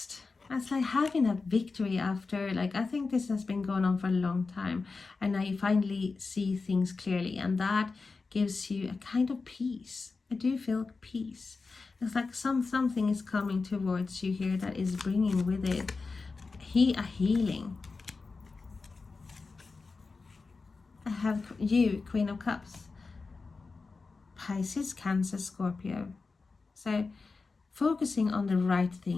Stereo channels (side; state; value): right; quieter; 4.2 dB